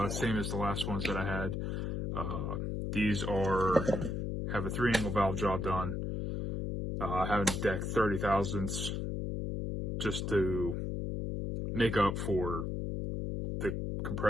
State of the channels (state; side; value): noise; left; hum, 2 dB below the sound